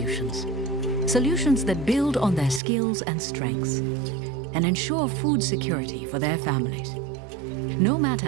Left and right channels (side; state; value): left; drops out; at 2.6 s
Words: Solutions that build on their skills and strengths, and ensure food security for their families, no